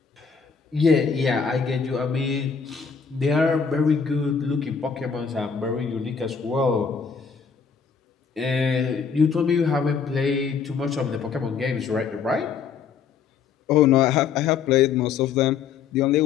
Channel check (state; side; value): quieter; right; 6.2 dB